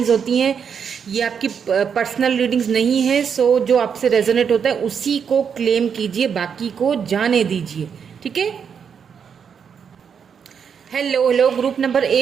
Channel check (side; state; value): left; quieter; 7.1 dB